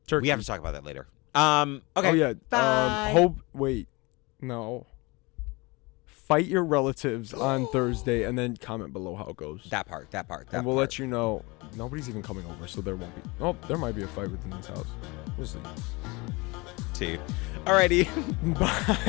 have to talk about that later. Okay. Oh, yeah. Bye. Wait. No. Fight your relatives on Thursday and then comment below how it goes. That part. And we'll let you know. Nobody's even coming over, so there won't be. Oh, there might be a fight within this house. We'll see. Alrighty.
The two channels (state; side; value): quieter; right; 25.3 dB